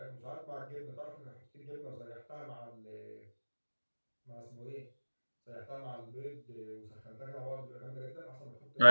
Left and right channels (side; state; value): both; inverted; correlation -1.00